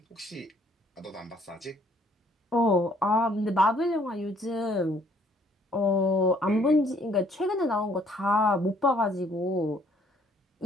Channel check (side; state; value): both; normal; correlation 0.62